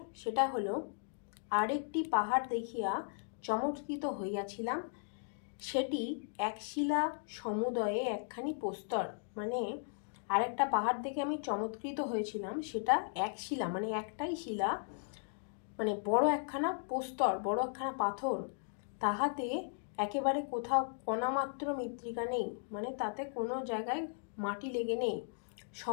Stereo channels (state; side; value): silent; right; digital silence